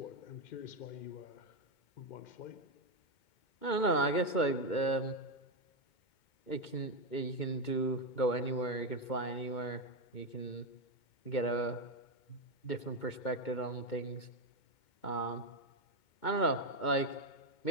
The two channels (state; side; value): late; right; 2.2 ms